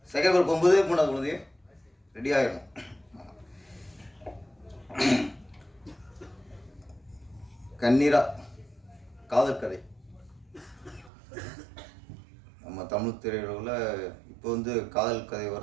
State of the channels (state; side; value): drops out; left; at 11.1 s